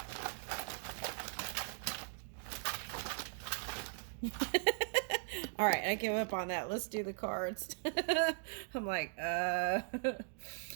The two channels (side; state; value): left; silent; digital silence